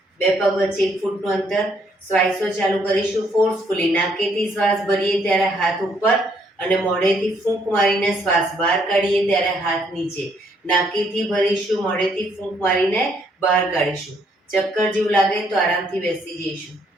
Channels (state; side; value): normal; both; correlation 0.69